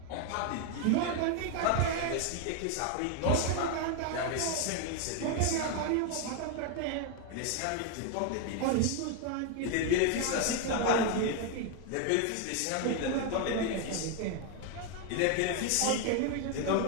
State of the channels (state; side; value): different; both; correlation 0.01